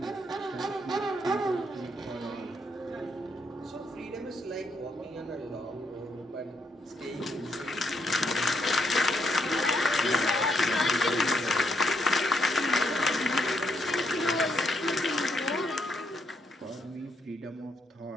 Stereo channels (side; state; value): both; normal; correlation 0.75